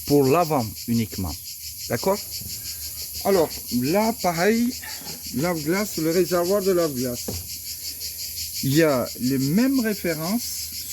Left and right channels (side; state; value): both; identical; correlation 1.00